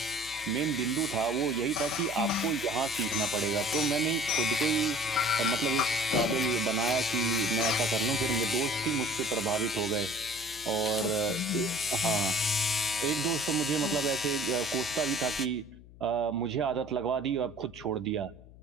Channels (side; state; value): left; noise; hum, 20 dB below the sound